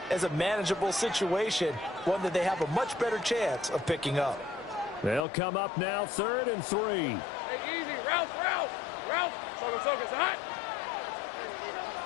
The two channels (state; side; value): drops out; right; at 5.2 s